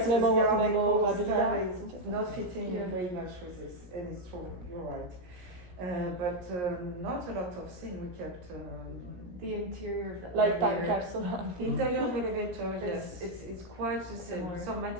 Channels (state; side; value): late; left; 17 ms